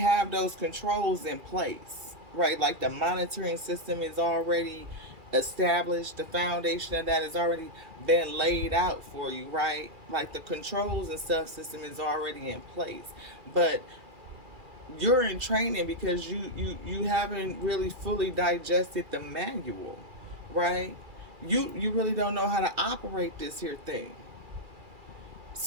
those controls in place, right? Like the monitoring system is already established, the foundation of that has already been laid out for you, right? Like the controls and stuff system is already in place. But you're in training because you haven't really fully digested the manual, right? You really don't know how to operate this here thing.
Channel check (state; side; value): late; left; 2.4 ms